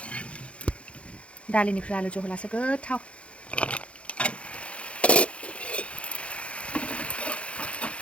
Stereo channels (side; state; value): right; late; 0.061 ms